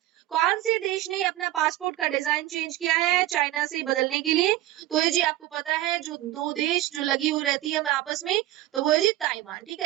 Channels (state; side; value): quieter; left; 15.1 dB